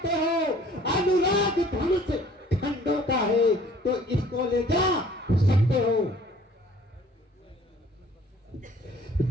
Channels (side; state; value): both; normal; correlation 0.53